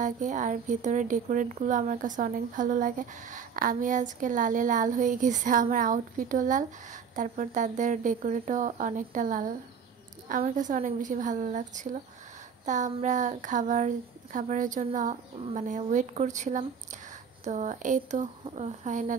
লাগে, আর ভিতরে ডেকোরেটগুলো আমার কাছে অনেক ভালো লাগে। আমি আজকে লালে লাল হয়ে গেছে, আমার আউটফিটও লাল, তারপর তাদের ডেকোরেটও অনেকটা লাল। আমার কাছে অনেক বেশি ভালো লাগছিল। তা আমরা খাবারের জন্য ওয়েট করছিলাম। তো এই তো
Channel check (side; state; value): left; quieter; 6.7 dB